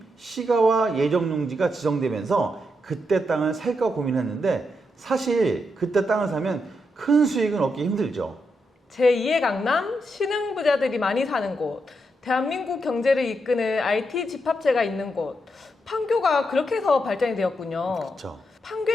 시가와 예정용지가 지정되면서 그때 땅을 살까 고민했는데 사실 그때 땅을 사면 큰 수익은 얻기 힘들죠. 제2의 강남, 신흥부자들이 많이 사는 곳, 대한민국 경제를 이끄는 IT 집합체가 있는 곳, 판교가 그렇게 해서 발전이 되었군요. 그렇죠.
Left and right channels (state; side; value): normal; both; correlation 0.83